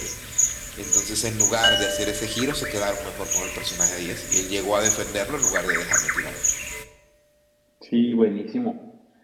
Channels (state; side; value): identical; both; correlation 1.00